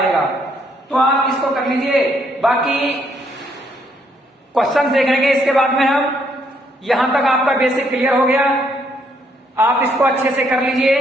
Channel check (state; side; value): normal; both; correlation 0.71